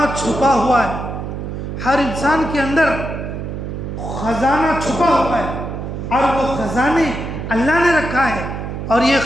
چھپا ہوا ہے، ہر انسان کے اندر خزانہ چھپا ہوا ہے، اور وہ خزانے اللہ نے رکھا ہے، اور یہ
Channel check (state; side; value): noise; right; hum, 6 dB below the sound